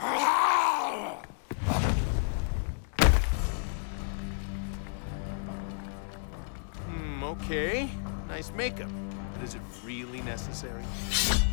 Okay. Nice makeup. But is it really necessary?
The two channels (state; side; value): silent; right; digital silence